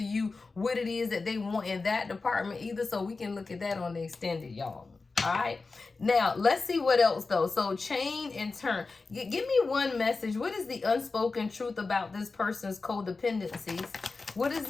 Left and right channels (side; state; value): right; quieter; 4.0 dB